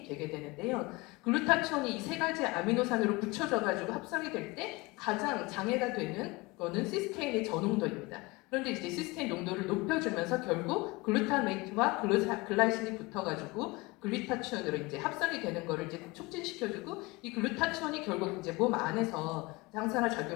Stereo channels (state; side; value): quieter; right; 23.5 dB